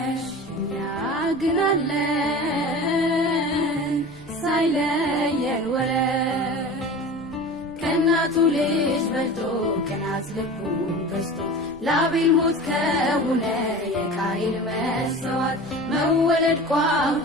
እኛ ግን አለን ሳይለየን ወረት ከናቱ ልጅ በልቶ ከናት ልቡን ገዝቶ ላቤል ሞት ከሆነ የቃይል መስዋዕት መወለድ ቋንቋ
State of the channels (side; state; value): right; noise; rumble, 22 dB below the sound